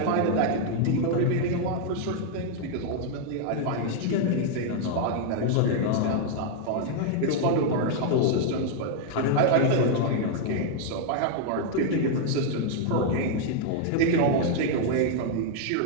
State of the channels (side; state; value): both; different; correlation 0.00